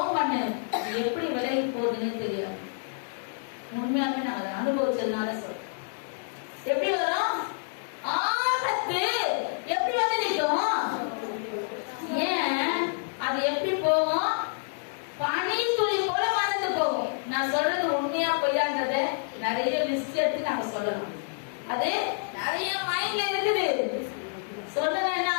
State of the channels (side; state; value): right; silent; digital silence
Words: பண்ணு, எப்படி விலகி போகுதுன்னு தெரியாது. உண்மையாவே நாங்க அனுபவிச்சதுனால சொல்றோம். எப்படி வரும்? ஆபத்து எப்படி வந்து நிற்கும்? ஏன் அது எப்படி போகும்? பனி துளி போல மறந்து போகும். நான் சொல்றது உண்மையா பொய்யான்றத நிறைய லிஸ்ட் எடுத்து நாங்க சொல்லலாம். அது நிறைய மைண்ட்ல இருக்குது. சொல்லணும் என்ன